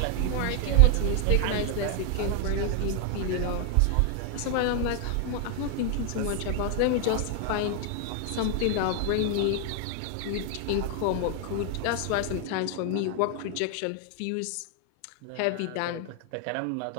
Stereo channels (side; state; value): both; different; correlation 0.00